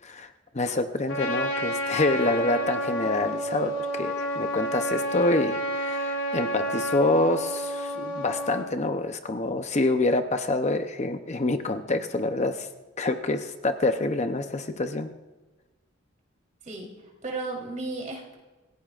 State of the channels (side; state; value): both; normal; correlation 0.26